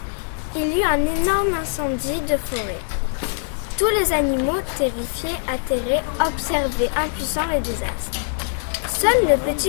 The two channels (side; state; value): right; silent; digital silence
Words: il y eut un énorme incendie de forêt. Tous les animaux, terrifiés, atterrés, observaient impuissants les désastres. Seul le